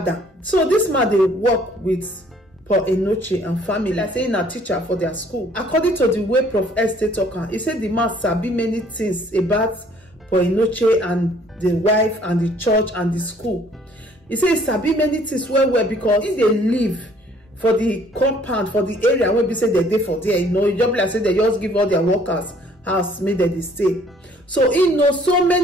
So this man they work with for Enenche and family, like saying a teacher for their school. According to the way Prof S stay talking, he said the man sabi many things about for Enenche and the wife and the church and the school. He said he sabi many things well because if they live for the compound, for the area where we say they dey for there, you know, you just like say they just give all their workers house made they stay. So he knows so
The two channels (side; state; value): both; normal; correlation 0.59